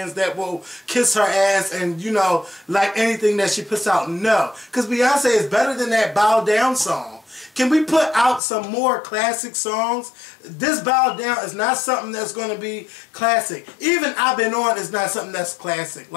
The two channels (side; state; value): right; drops out; at 8.4 s